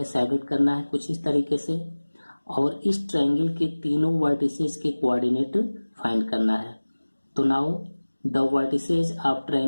शैडेड करना है कुछ इस तरीके से, और इस ट्रायंगल के तीनों वर्टिसेस के कोऑर्डिनेट फाइंड करना है. तो now the vertices of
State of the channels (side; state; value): both; inverted; correlation -1.00